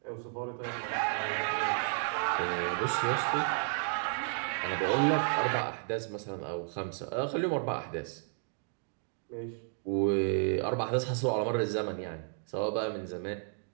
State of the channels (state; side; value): silent; left; 56 dB below the other